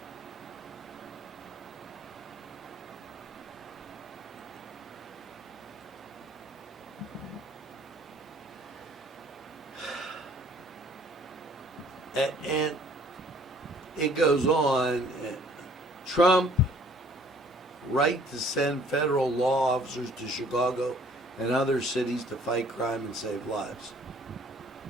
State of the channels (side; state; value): both; normal; correlation 0.57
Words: And it goes on. Trump right to send federal law officers to Chicago and other cities to fight crime and save lives.